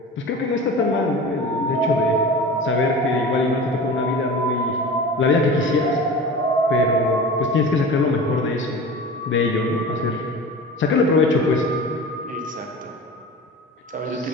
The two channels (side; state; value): both; normal; correlation 0.34